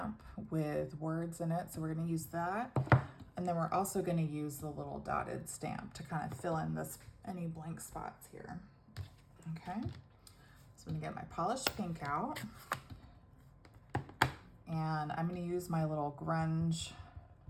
with words in it. So we're gonna use that. And then we're also gonna use the little dotted stamp to kind of fill in any blank spots here. Okay, so I'm gonna get my polished pink out. And I'm gonna use my little grunge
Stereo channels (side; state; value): both; identical; correlation 1.00